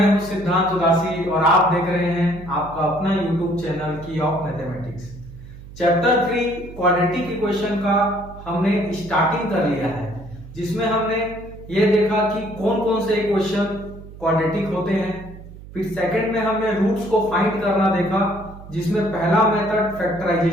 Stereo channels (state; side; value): noise; right; hum, 16 dB below the sound